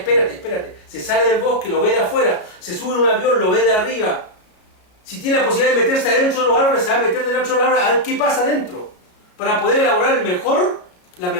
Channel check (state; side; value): late; right; 33 ms